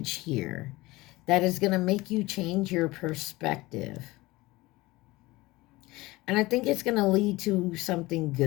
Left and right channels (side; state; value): right; quieter; 20.5 dB